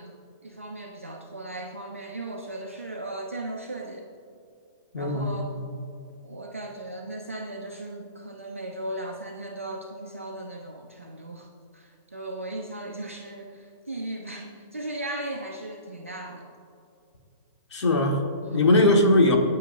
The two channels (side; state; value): both; inverted; correlation -0.46